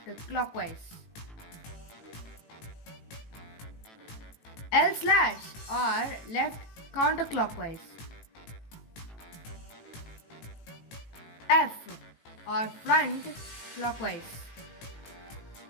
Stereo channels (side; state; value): right; late; 18 ms